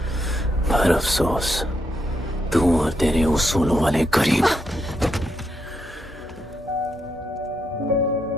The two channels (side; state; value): both; normal; correlation 0.80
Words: पर अफसोस तू और तेरे उसूलों वाले गरीब।